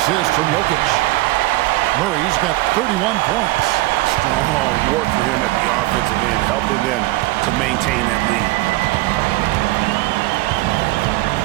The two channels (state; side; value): quieter; left; 19.2 dB